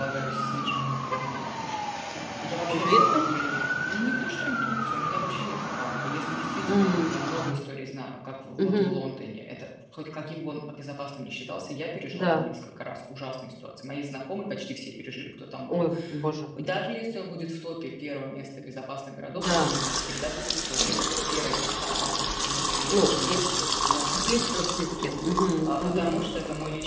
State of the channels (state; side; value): identical; both; correlation 1.00